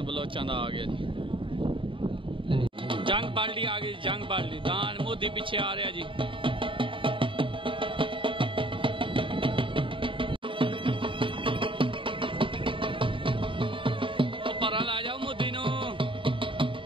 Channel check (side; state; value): left; late; 0.25 ms